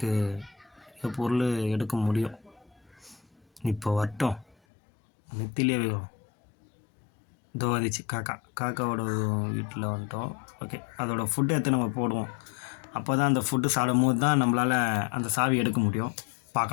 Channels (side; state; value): right; drops out; at 4.5 s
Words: பொருள் எடுக்க முடியும். இப்போ வரட்டும். நெத்திலே வேணும். இதோ வந்துச்சு காக்காவோட வீட்டில் வந்துட்டோம். ஓகே அதோடய ஃபுட்டு எடுத்து நம்ம போடுவோம். அப்போ தான் அந்த ஃபுட்டு சாப்பிடும் போது தான் நம்மளால் அந்த சாவி எடுக்க முடியும்.